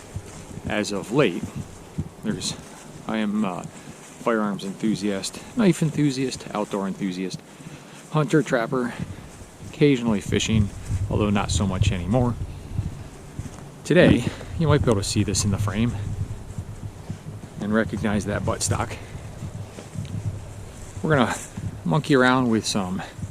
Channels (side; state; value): both; identical; correlation 1.00